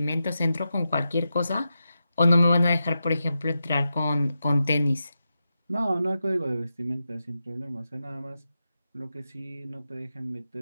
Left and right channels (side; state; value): both; inverted; correlation -0.89